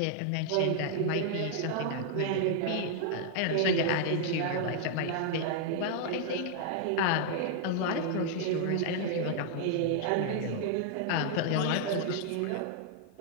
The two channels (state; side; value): different; both; correlation 0.00